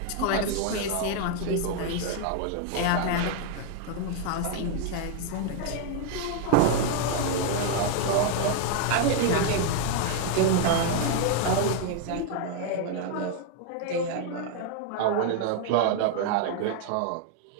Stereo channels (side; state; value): both; different; correlation 0.00